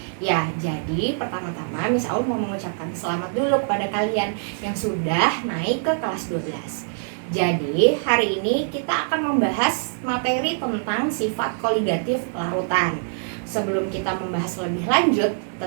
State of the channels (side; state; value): left; silent; 63 dB below the other